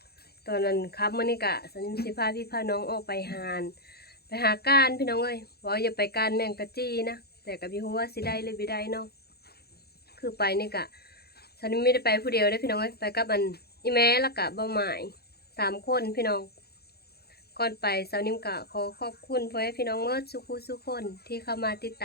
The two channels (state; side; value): late; right; 0.46 ms